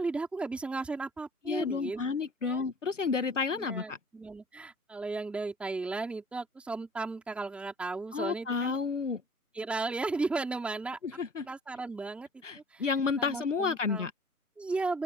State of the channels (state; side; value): normal; both; correlation 0.49